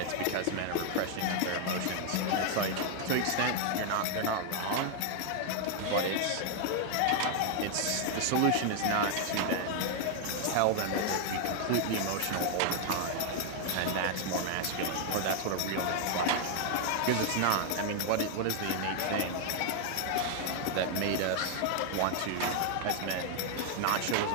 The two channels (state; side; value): different; both; correlation 0.00